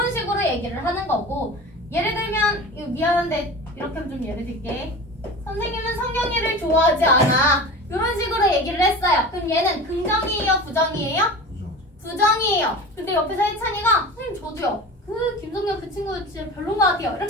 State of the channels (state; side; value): normal; both; correlation 0.33